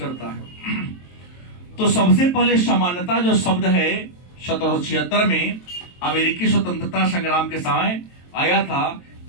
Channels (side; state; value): right; late; 23 ms